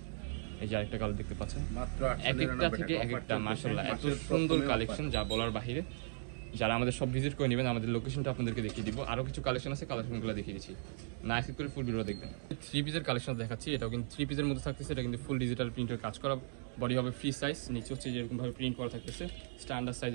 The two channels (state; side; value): silent; left; digital silence